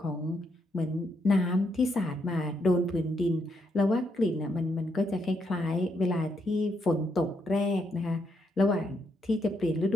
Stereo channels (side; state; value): both; normal; correlation 0.78